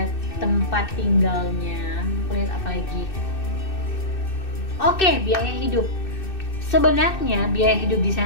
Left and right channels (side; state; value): right; late; 2.6 ms